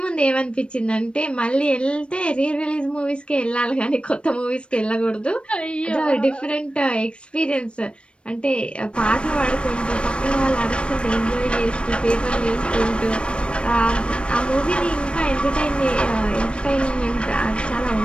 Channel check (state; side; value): late; right; 0.058 ms